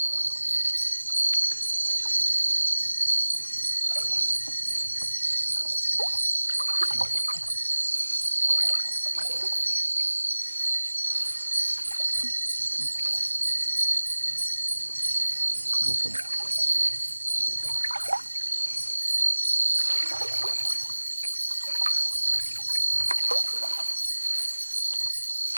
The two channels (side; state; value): both; inverted; correlation -1.00